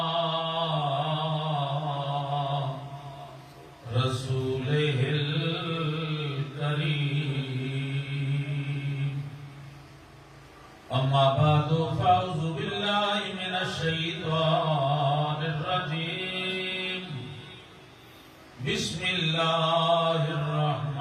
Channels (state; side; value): identical; both; correlation 1.00